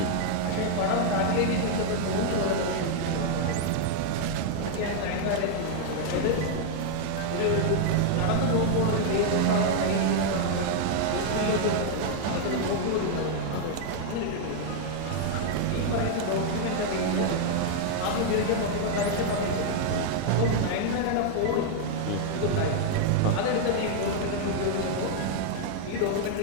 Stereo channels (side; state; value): both; different; correlation 0.00